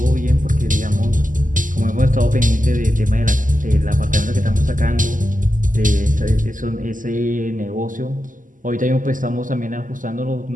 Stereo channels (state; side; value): late; left; 0.38 ms